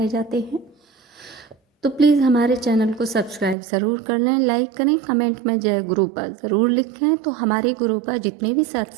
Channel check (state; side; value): drops out; left; at 3.6 s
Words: जाते हैं, तो प्लीज़ हमारे चैनल को सब्सक्राइब ज़रूर कर लें, लाइक करें, कमेंट में जय गुरुपा ज़रूर लिखें। तो हमारे गुरुपा जितने भी